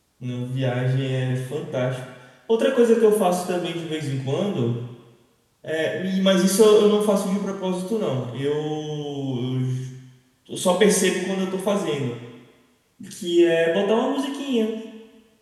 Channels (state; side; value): identical; both; correlation 1.00